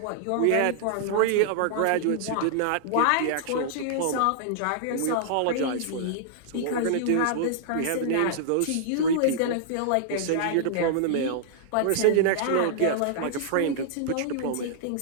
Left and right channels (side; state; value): both; different; correlation -0.01